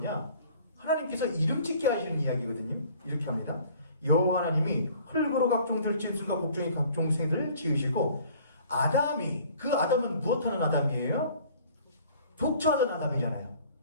하나님께서 이름 짓게 하시는 이야기거든요. 이렇게 합니다. 여호와 하나님이 흙으로 각종 들짐승과 곡종의 각종 생들을 지으시고 아담이, 그 아담은 무엇하는 아담이에요? 독처하던 아담이잖아요.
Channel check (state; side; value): inverted; both; correlation -0.52